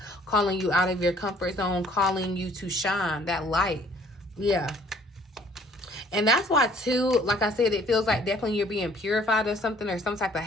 calling you out of your comfort zone, calling you to shine that light. Yeah. And that's why, too, like I said, it feels like definitely you're being purified of something, or some type of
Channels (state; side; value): normal; both; correlation 0.58